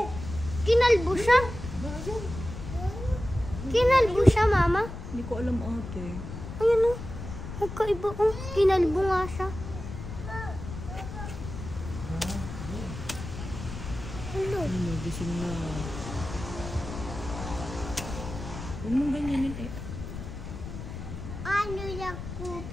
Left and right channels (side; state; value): left; noise; rumble, 9 dB below the sound